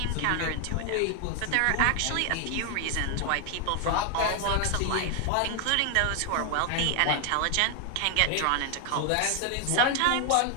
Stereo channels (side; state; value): both; different; correlation 0.00